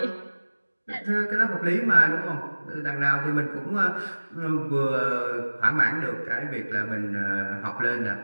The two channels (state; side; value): inverted; both; correlation -1.00